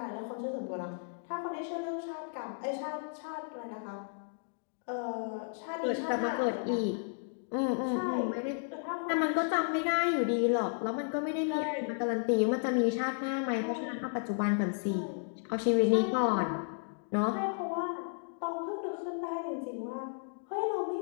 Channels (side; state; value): right; silent; digital silence